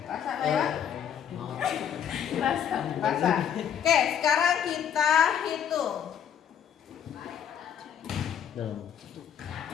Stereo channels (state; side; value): quieter; right; 8.8 dB